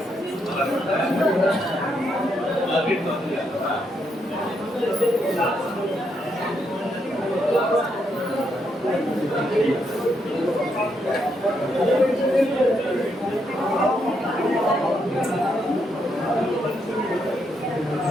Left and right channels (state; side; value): normal; both; correlation 0.78